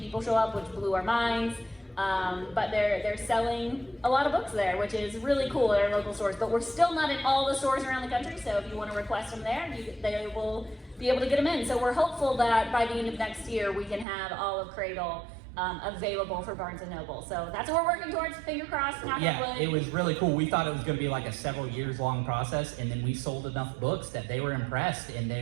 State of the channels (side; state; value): left; drops out; at 14.1 s